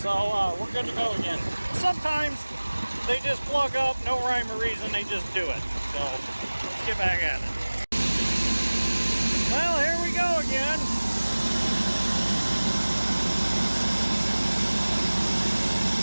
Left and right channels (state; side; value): inverted; both; correlation -1.00